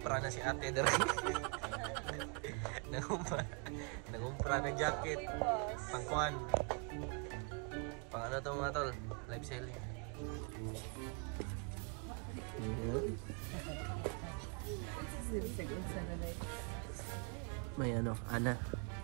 na si ate dere. Nangumpra ng jacket. Pangkuan. Pang ano to mga tol? Live selling. May ano, Ana.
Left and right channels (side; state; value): left; quieter; 33.6 dB